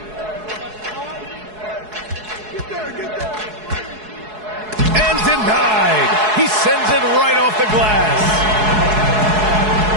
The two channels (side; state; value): left; late; 4.7 ms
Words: And denied. He sends it right off the glass.